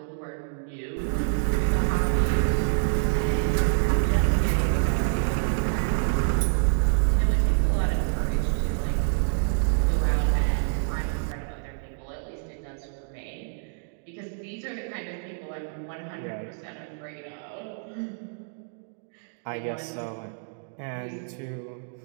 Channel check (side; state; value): left; silent; digital silence